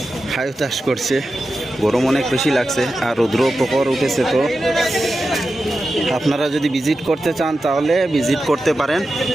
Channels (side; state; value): both; normal; correlation 0.91